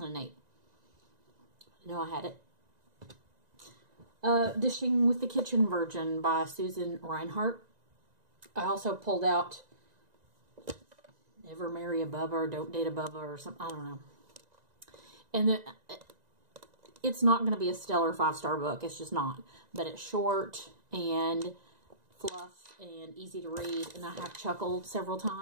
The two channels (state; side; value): late; left; 1.9 ms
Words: I know I had it. Dishing with the Kitchen Virgin by Susan Reinhardt. I also pulled out Never Marry a Bubba or Don't Date a Bubba or something. I don't know. And it's not going to be a stellar 5-star book. It's just not. But it's short, and fluff and easy to read, and I have chuckled several